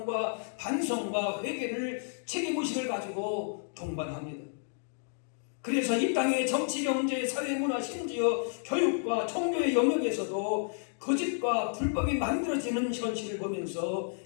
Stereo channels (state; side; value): silent; right; digital silence